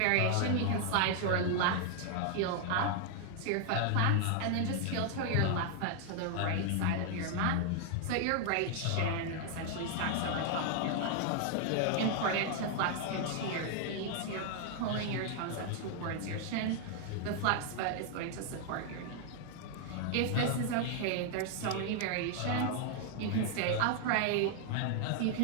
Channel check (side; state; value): both; different; correlation 0.00